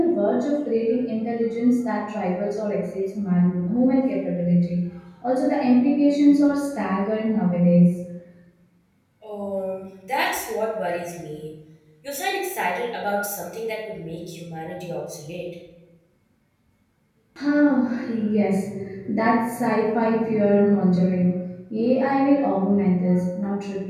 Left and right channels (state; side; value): identical; both; correlation 1.00